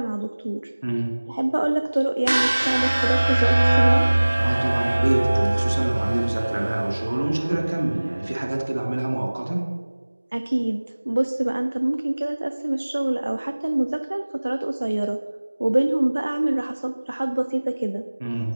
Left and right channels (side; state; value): both; inverted; correlation -1.00